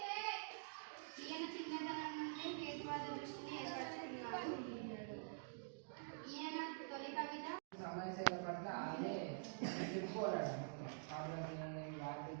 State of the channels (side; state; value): left; silent; digital silence